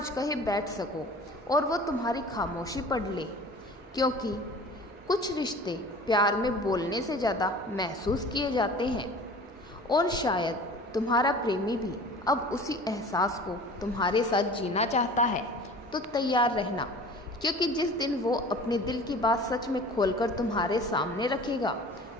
कहे बैठ सको और वो तुम्हारी खामोशी पढ़ ले, क्योंकि कुछ रिश्ते प्यार में बोलने से ज़्यादा महसूस किए जाते हैं। और शायद तुम्हारा प्रेमी भी अब उसी एहसास को तुम्हारे साथ जीना चाहता है। तो तैयार रहना, क्योंकि जिस दिन वो अपने दिल की बात सच में खोलकर तुम्हारे सामने रखेगा,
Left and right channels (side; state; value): both; normal; correlation 0.42